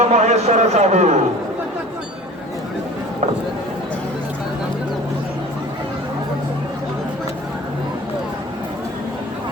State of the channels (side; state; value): both; normal; correlation 0.43